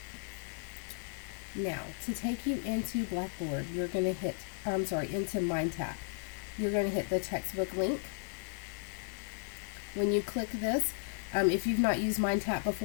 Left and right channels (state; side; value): silent; right; digital silence